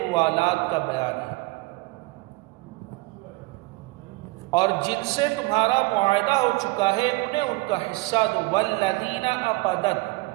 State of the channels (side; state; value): left; quieter; 23.2 dB